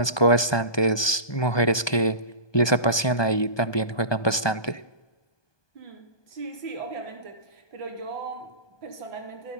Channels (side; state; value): right; late; 1.2 ms